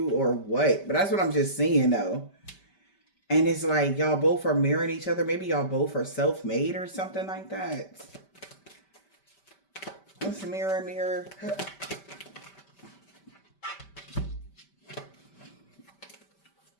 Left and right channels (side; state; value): right; late; 5.1 ms